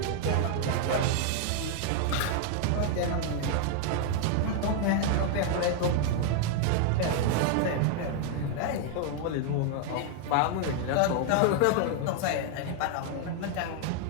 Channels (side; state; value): both; different; correlation 0.00